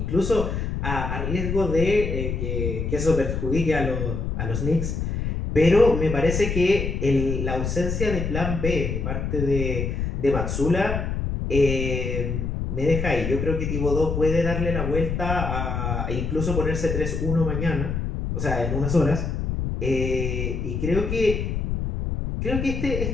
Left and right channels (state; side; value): noise; left; rumble, 2 dB below the sound